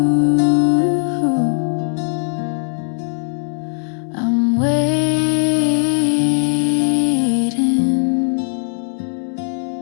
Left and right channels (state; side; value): silent; right; digital silence